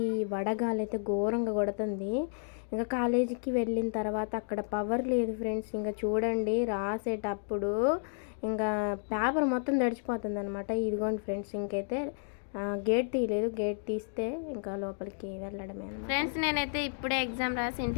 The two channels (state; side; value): silent; right; digital silence